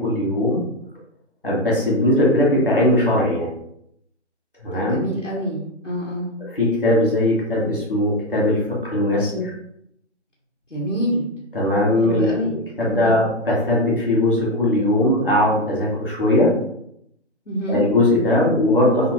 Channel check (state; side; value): normal; both; correlation 0.11